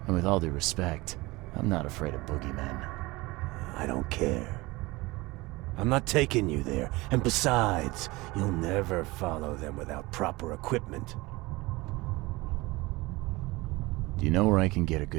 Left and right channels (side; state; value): left; quieter; 21.9 dB